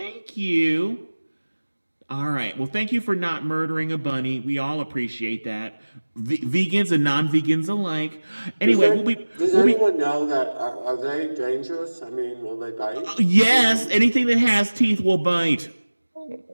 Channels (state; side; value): inverted; both; correlation -1.00